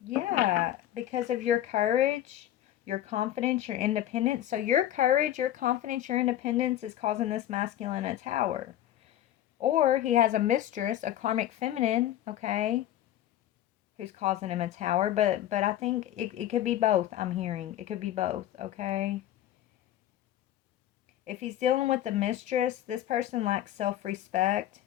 Yeah, because of your courage, your confidence, your independence. So your courage, your confidence, your independence is causing this masculine a tower. Or he has a mistress, a karmic feminine, okay, who's causing him a tower. But I think it could be both, I'm hearing. It could be both, okay? If he's dealing with a mistress, this person lacks self-respect,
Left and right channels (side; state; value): right; quieter; 12.5 dB